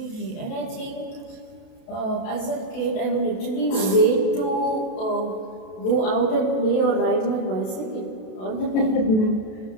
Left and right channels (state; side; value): late; right; 32 ms